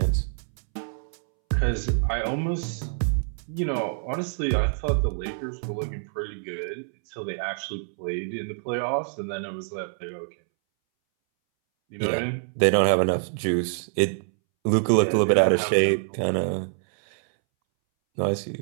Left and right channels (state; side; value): silent; left; 61 dB below the other